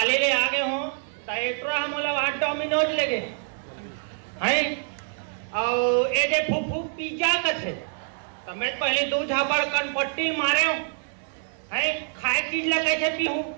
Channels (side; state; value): left; silent; digital silence